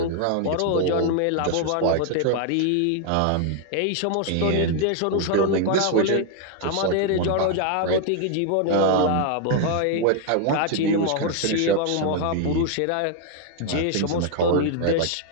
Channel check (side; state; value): both; different; correlation 0.00